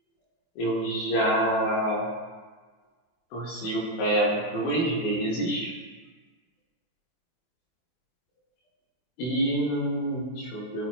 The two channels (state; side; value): late; right; 24 ms